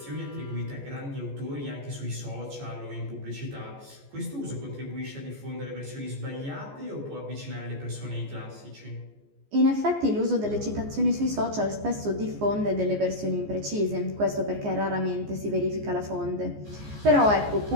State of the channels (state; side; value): late; left; 14 ms